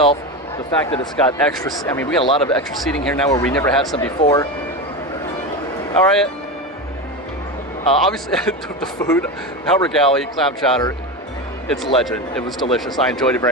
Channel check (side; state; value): both; normal; correlation 0.20